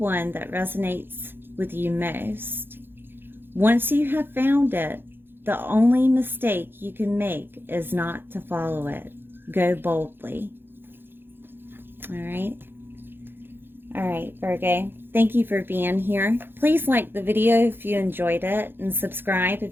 that resonates with you most. Once you have found it, the only mistake you can make is not to follow it. Go boldly. All right. All right, Virgo. Thank you for being here. Please like the video if you enjoyed it and subscribe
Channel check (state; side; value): late; left; 0.10 ms